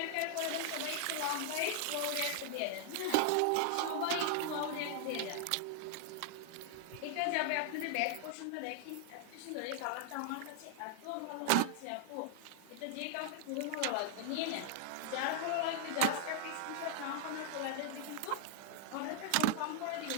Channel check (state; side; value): different; both; correlation 0.00